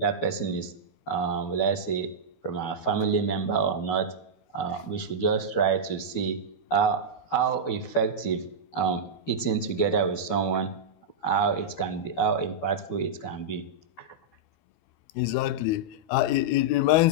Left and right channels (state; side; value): late; right; 12 ms